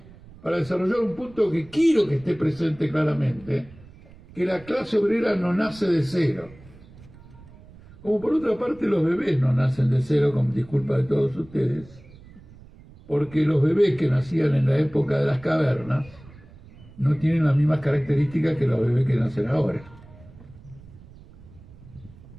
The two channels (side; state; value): right; noise; rumble, 22 dB below the sound